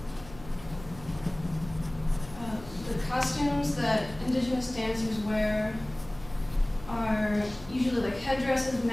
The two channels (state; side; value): noise; left; hum, 18 dB below the sound